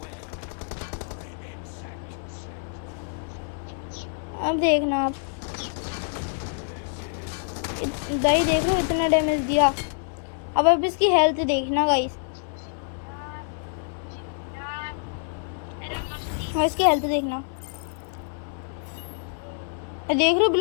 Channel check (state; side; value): silent; right; 60 dB below the other